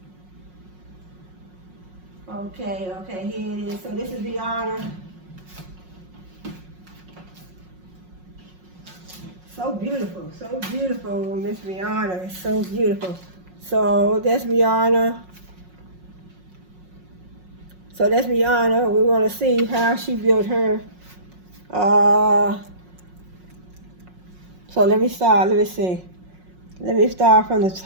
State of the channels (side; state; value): left; late; 5.5 ms